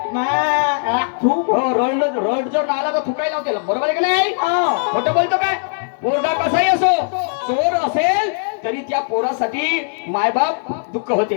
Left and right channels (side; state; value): right; silent; digital silence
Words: रड जर आला तर थुकाई लावते, बरोबर आहे का नाही? खोटं बोलतो काय? पोरगा कसाही असो, चोर असेल तरी त्या पोरासाठी मायबाप दुःख